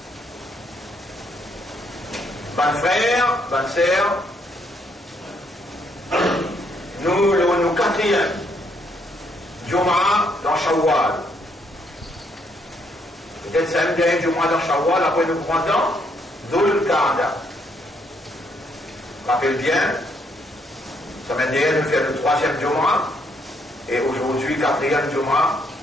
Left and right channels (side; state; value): both; normal; correlation 0.72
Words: Ban frère, ban sœur, nous quatrième, Jum'a dans Shawwal. Peut-être c'est un dernier Jum'a dans Shawwal, après nous prenons Dhul Qa'da. Rappelle bien, semaine dernière, nous faisons le troisième Jum'a, et aujourd'hui, quatrième Jum'a,